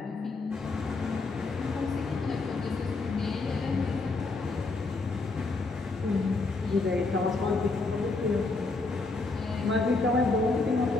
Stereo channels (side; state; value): right; quieter; 3.6 dB